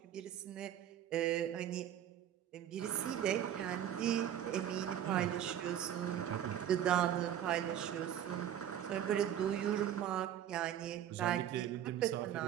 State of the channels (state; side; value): quieter; left; 10.5 dB